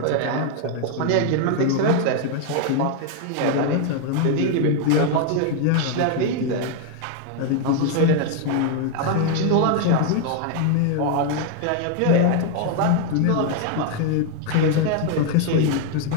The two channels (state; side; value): different; both; correlation 0.01